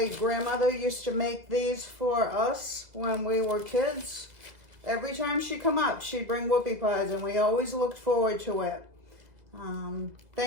grandmother used to make these for us when we were kids. Every time she'd come up, she'd bring whoopie pies, and we always looked forward to it.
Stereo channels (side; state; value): left; late; 2.0 ms